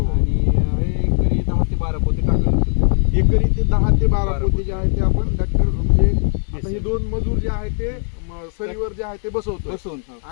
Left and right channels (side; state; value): right; silent; 55 dB below the other